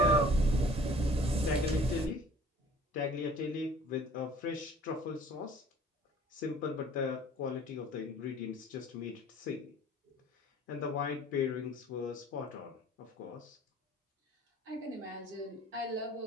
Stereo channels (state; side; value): normal; both; correlation 0.51